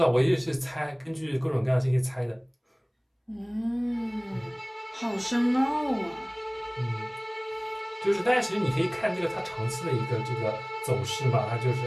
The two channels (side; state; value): both; identical; correlation 1.00